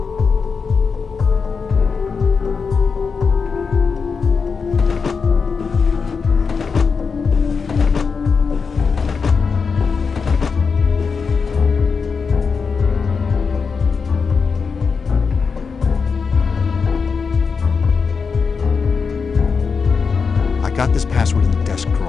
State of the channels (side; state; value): right; quieter; 5.3 dB